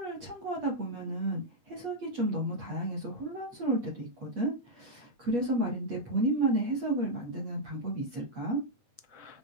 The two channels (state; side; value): late; left; 8.3 ms